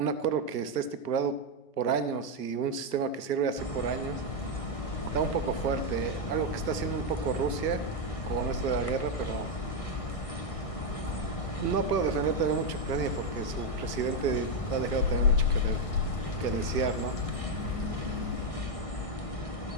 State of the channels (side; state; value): right; late; 1.6 ms